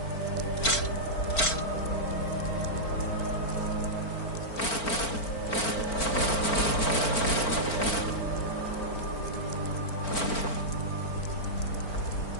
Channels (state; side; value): late; right; 4.4 ms